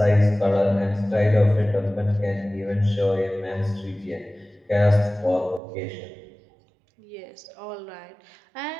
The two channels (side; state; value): left; drops out; at 5.6 s